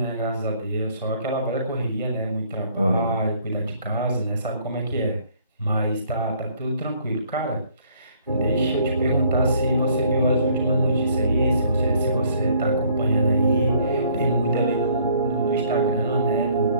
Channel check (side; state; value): both; inverted; correlation -0.62